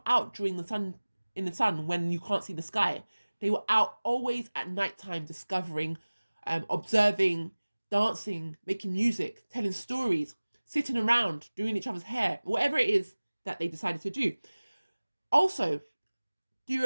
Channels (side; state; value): both; inverted; correlation -1.00